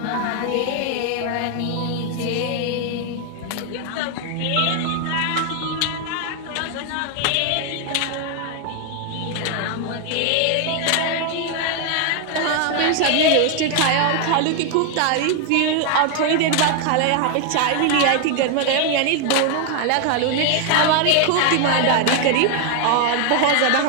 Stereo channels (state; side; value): different; both; correlation 0.00